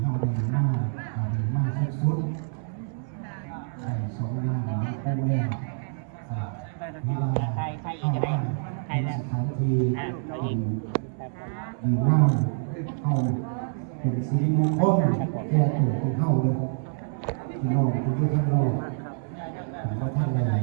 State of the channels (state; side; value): silent; left; 60 dB below the other